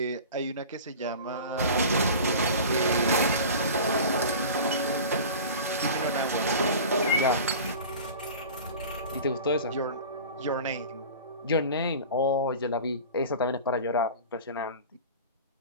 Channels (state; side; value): inverted; both; correlation -0.36